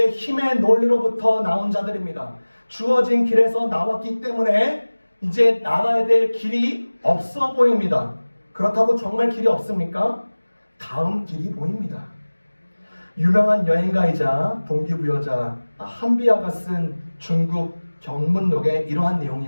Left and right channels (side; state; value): both; inverted; correlation -1.00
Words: 힘의 논리로부터 나온 자들입니다. 주어진 길에서 나왔기 때문에 이제 나가야 될 길이 없어 보입니다. 그렇다고 정말 길이 없습니까? 다음 길이 보입니다. 유명한 여행가이자 동기부여자 한비아가 쓴 중국 경문록에 이러한